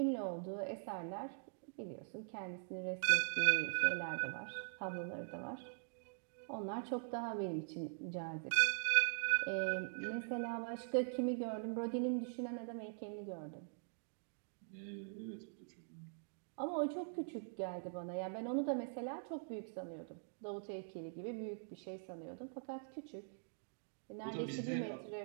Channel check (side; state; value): left; silent; digital silence